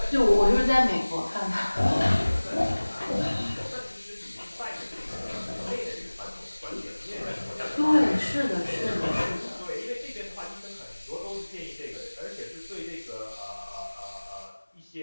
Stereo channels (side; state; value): both; inverted; correlation -1.00